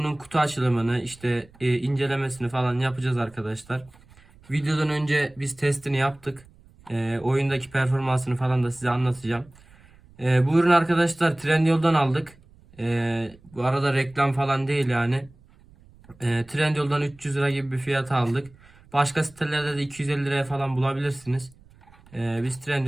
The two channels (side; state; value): right; noise; rumble, 26 dB below the sound